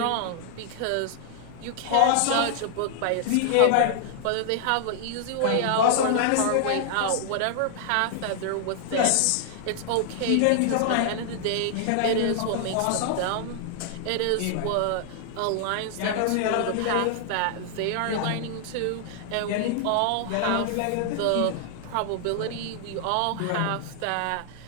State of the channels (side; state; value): both; different; correlation 0.00